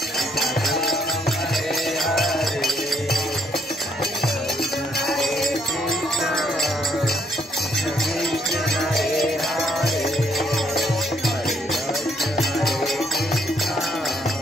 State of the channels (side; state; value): both; normal; correlation 0.70